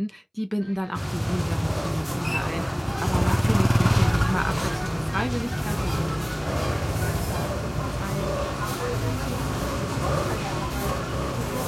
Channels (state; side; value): identical; both; correlation 1.00